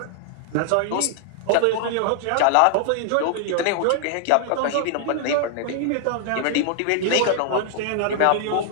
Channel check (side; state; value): both; different; correlation 0.00